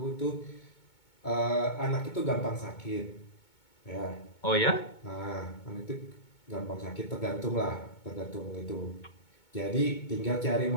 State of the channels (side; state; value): right; late; 2.2 ms